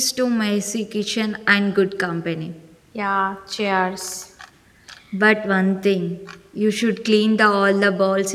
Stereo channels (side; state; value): both; identical; correlation 1.00